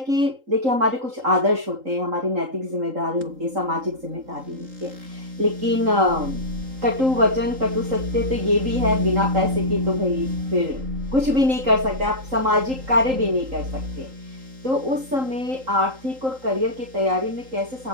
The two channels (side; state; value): left; late; 3.8 ms